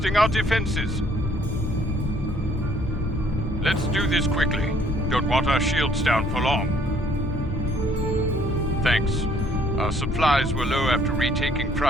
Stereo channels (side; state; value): both; normal; correlation 0.61